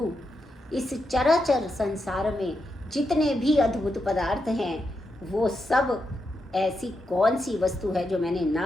इस चराचर संसार में जितने भी अद्भुत पदार्थ हैं वो सब ऐसी कौन सी वस्तु है जो मैंने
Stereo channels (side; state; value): both; normal; correlation 0.85